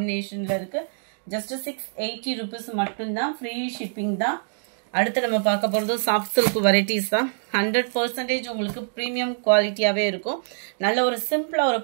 இருக்குது. ஜஸ்ட் 680 rupees மட்டும்தான். ஃப்ரீ ஷிப்பிங் தான். அடுத்து நம்ம பார்க்க போகிறது சாஃப்ட் சில்க் வெரைட்டிஸ் தான். 100% உங்களுக்கு ப்ரீமியம் குவாலிட்டியாகவே இருக்கும். நல்ல ஒரு சிம்பிளாக ஒரு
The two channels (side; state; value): left; silent; digital silence